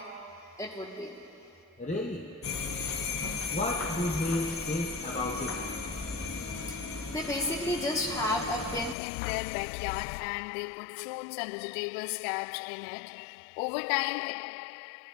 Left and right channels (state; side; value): drops out; right; at 9.0 s